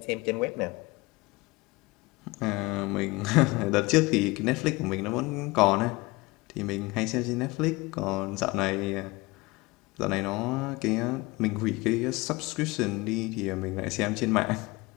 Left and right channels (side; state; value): right; quieter; 23.0 dB